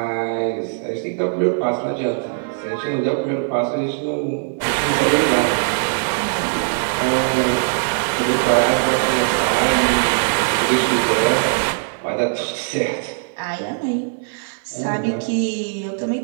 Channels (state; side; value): silent; left; 65 dB below the other